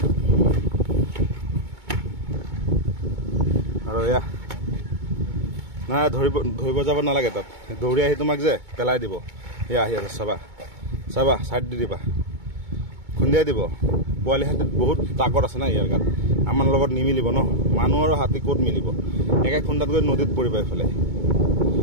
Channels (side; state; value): left; late; 2.2 ms